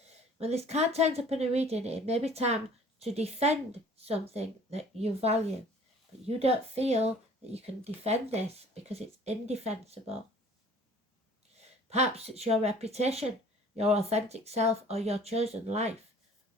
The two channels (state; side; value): normal; both; correlation 0.51